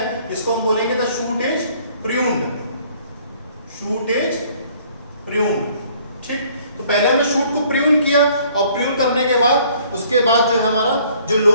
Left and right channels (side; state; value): both; inverted; correlation -0.59